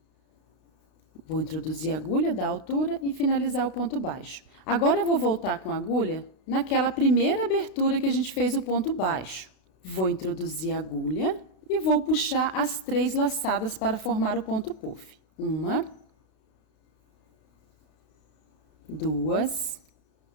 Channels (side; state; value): right; late; 32 ms